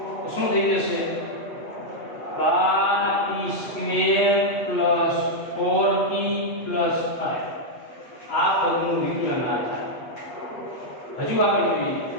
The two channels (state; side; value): late; right; 8.2 ms